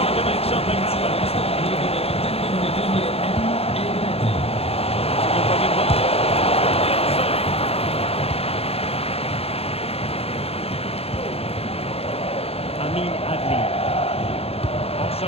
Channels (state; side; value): late; right; 0.29 ms